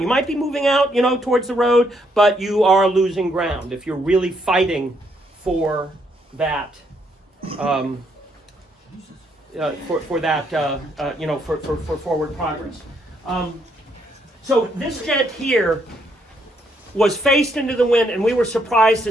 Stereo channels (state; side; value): normal; both; correlation 0.73